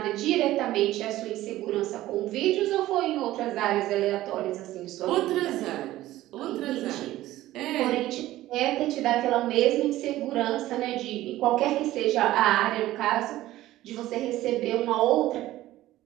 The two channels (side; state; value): left; quieter; 15.5 dB